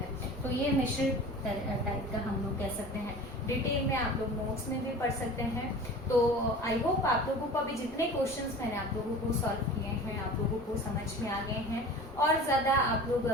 तो ये मिश्रित टाइप का हम लोग कह सकते हैं। डिटेल में आप लोग नोट्स में भी पढ़ सकते हैं। तो आई होप आप लोगों को अभी जितने क्वेश्चंस मैंने आप लोगों को सॉल्व किए हैं आप लोगों को समझ में आ गए हैं। और ज़्यादा आप लोग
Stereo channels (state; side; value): normal; both; correlation 0.39